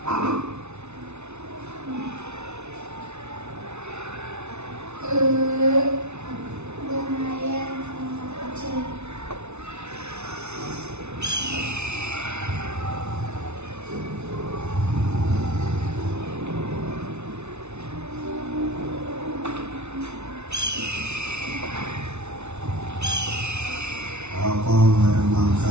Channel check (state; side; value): late; left; 0.81 ms